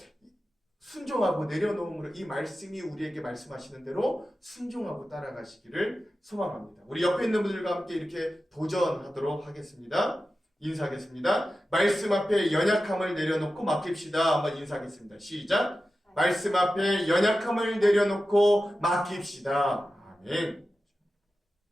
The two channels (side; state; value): both; normal; correlation 0.93